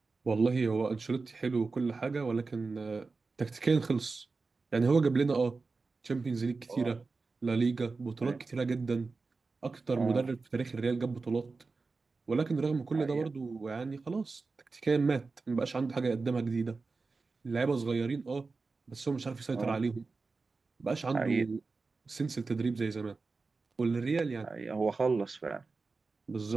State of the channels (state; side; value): quieter; left; 4.1 dB